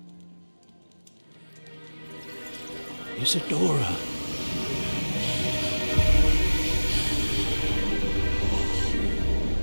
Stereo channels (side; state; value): both; inverted; correlation -1.00